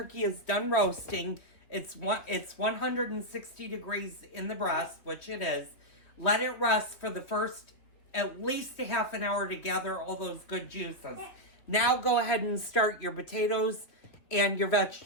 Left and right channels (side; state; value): right; late; 3.0 ms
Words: is done roasting. It's 160 degrees in the breast, which it is. Let it rest for the first at least a half an hour to gather all those good juices. Now go ahead and start your potatoes and your